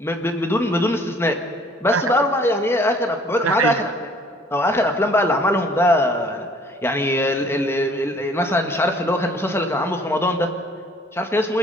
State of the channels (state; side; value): normal; both; correlation 0.56